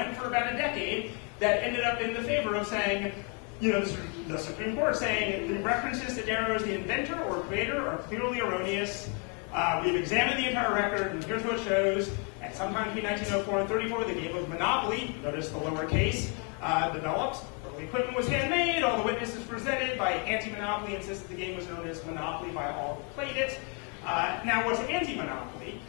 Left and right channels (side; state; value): right; quieter; 33.9 dB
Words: for about a decade that ended up in the favor of saying, the Supreme Court saying the references to Darrow as the inventor or creator are clearly erroneous. We've examined the entire record, and here's what it shows. At sometime between 1904 and 34, the game of Monopoly, notice the lower case, developed. Early equipment was handmade. All the witnesses presented by anti-monopoly insisted the game was known as Monopoly by all who played it. Now, what's anti-monopoly?